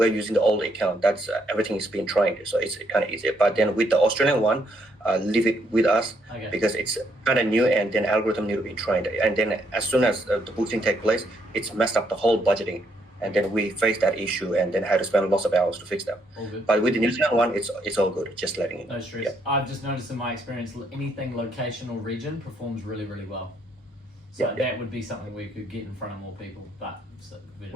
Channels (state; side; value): normal; both; correlation 0.73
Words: using the old account. That's everything is being trained, so it's kind of easy. But then with the Australian one, leave it with us Okay. because it's kind of new, and then algorithm need to be trained. And then as soon as the boosting take place, it's messed up the whole budgeting. And then we face that issue, and then had to spend lots of hours to fix that. All good. But with the New Zealand one, it's all good. Just letting it. No stress. Yeah. I've just noticed in my experience, anything location or region performs really, really well. So Yeah. that would be something we could get in front of more people. But